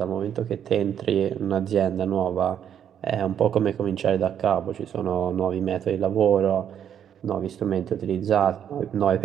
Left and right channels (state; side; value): quieter; left; 9.2 dB